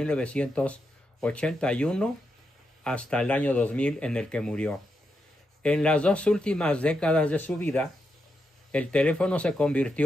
hasta el año 2000 en el que murió. En las 2 últimas décadas de su vida, el teléfono se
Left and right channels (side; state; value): both; normal; correlation 0.84